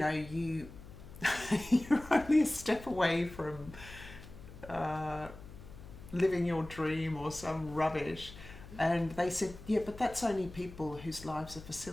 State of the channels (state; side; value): noise; left; hum, 16 dB below the sound